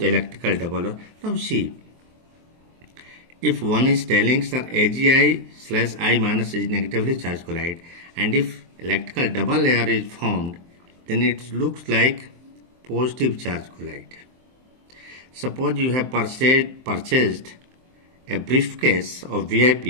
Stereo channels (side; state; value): left; late; 23 ms